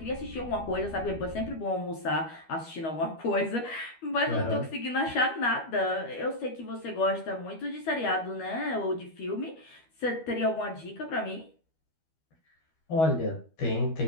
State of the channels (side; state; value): right; late; 12 ms